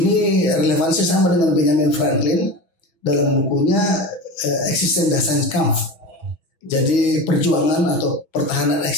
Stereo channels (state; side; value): late; right; 6.2 ms